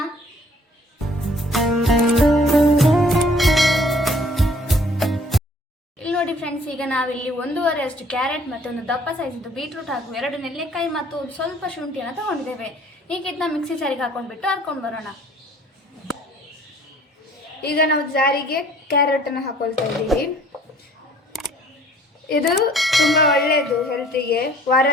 ಇಲ್ಲಿ ನೋಡಿ ಫ್ರೆಂಡ್ಸ್, ಈಗ ನಾವಿಲ್ಲಿ 1.5 ಅಷ್ಟು ಕ್ಯಾರೆಟ್ ಮತ್ತು ಒಂದು ದಪ್ಪ ಸೈಜ್ ಬೀಟ್ರೂಟ್ ಹಾಗೂ 2 ನೆಲ್ಲಿಕಾಯಿ ಮತ್ತು ಸ್ವಲ್ಪ ಶುಂಠಿಯನ್ನು ತಗೊಂಡಿದ್ದೇವೆ. ಈಗ ಇದನ್ನ ಮಿಕ್ಸಿ ಜಾರಿಗೆ ಹಾಕೊಂಡ್ಬಿಟ್ಟು ಹರ್ಕೊಂಡು ಬರೋಣ. ಈಗ ನಾವು ಜಾರಿಗೆ ಕ್ಯಾರೆಟನ್ನು ಹಾಕೊಳ್ತಾ ಇದ್ದೀವಿ. ಇದು ತುಂಬ ಒಳ್ಳೆಯದು ಹೆಲ್ತಿಗೆ.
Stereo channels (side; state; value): both; normal; correlation 0.56